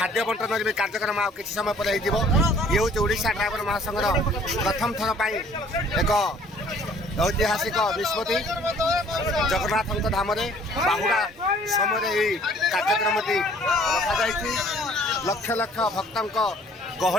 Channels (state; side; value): normal; both; correlation 0.55